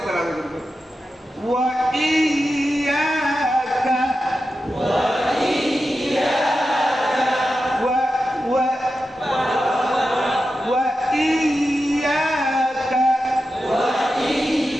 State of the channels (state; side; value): normal; both; correlation 0.91